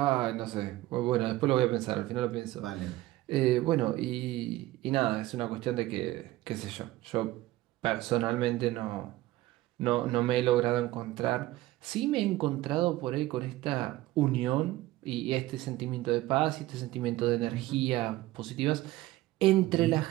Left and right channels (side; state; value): left; quieter; 17.0 dB